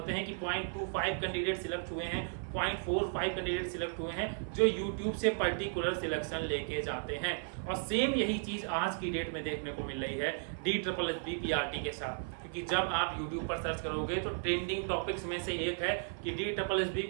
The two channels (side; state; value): left; silent; 54 dB below the other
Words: हैं कि 0.25 कैंडिडेट सिलेक्ट हुए हैं, 0.45 कैंडिडेट सिलेक्ट हुए हैं जो यूट्यूब से पर्टिकुलर सिलेक्शन लेके जाते हैं। और सेम यही चीज आज की डेट में देखने को मिल रही है DSSB PRT के साथ, क्योंकि जब आप यूट्यूब पर सर्च करोगे तो ट्रेंडिंग टॉपिक्स में से एक है कि DSSB